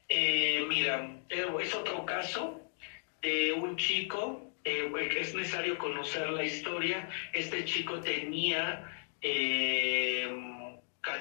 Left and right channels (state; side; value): silent; right; digital silence